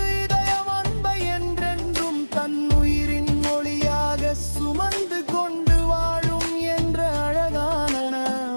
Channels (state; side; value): inverted; both; correlation -1.00